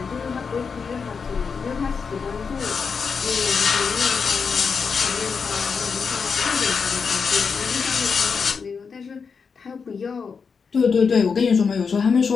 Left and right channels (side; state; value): right; quieter; 5.6 dB